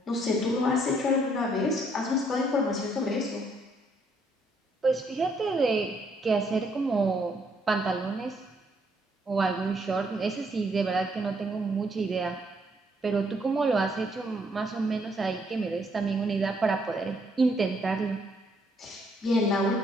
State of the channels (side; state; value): both; normal; correlation 0.70